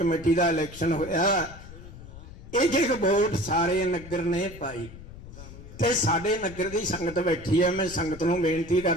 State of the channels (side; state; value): left; noise; rumble, 15 dB below the sound